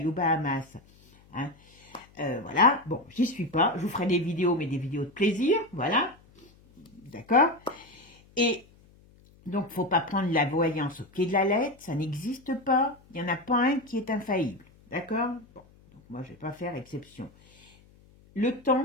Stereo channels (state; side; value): noise; left; hum, 28 dB below the sound